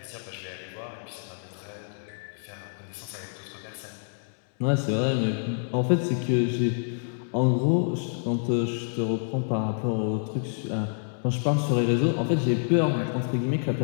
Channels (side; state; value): right; silent; digital silence